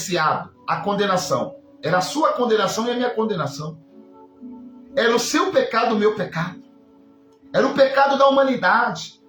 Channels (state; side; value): identical; both; correlation 1.00